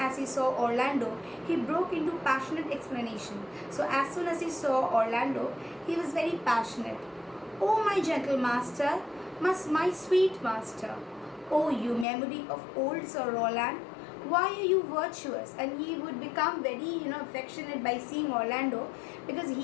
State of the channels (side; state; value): right; drops out; at 12.1 s